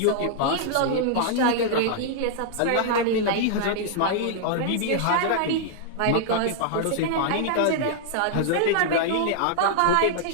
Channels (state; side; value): different; both; correlation -0.01